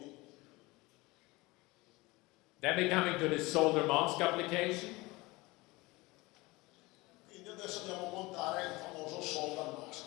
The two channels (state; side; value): quieter; right; 22.3 dB